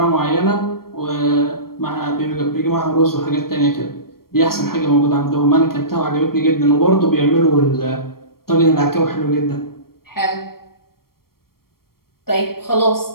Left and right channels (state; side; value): late; right; 0.94 ms